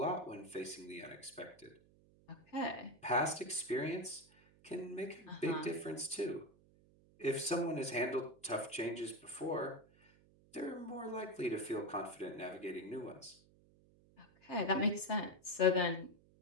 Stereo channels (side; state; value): right; noise; hum, 28 dB below the sound